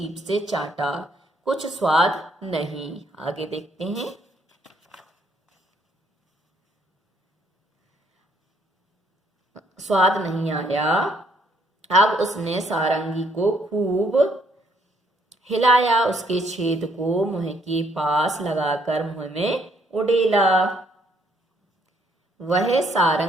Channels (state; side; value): normal; both; correlation 0.68